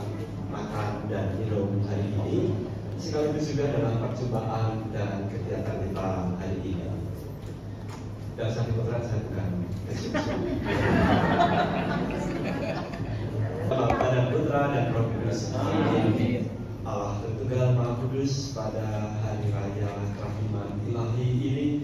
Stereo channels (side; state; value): both; identical; correlation 1.00